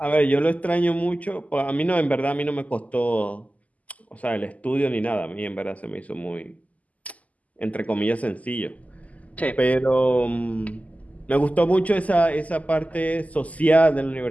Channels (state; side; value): late; right; 0.074 ms